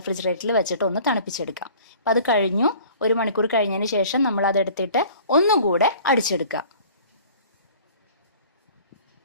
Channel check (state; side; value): inverted; both; correlation -0.48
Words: വെച്ചിട്ട് ഒന്ന് തണുപ്പിച്ചെടുക്കാം. അപ്പം അത് കഴിഞ്ഞു. 1 മണിക്കൂർ കഴിഞ്ഞതിന് ശേഷം നമ്മൾ അതെടുത്തിട്ട് ഒന്നുകൂടെ അടിച്ചെടുക്കുക.